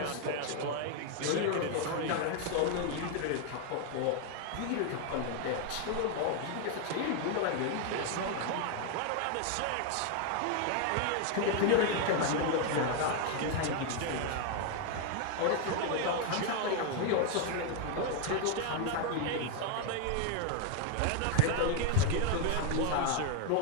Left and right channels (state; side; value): different; both; correlation 0.01